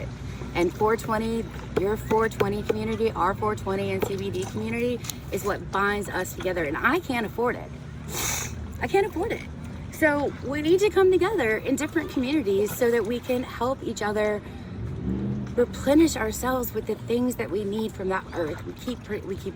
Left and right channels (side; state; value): both; identical; correlation 1.00